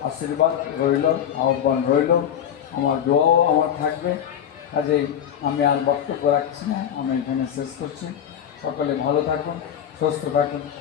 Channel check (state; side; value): quieter; right; 9.4 dB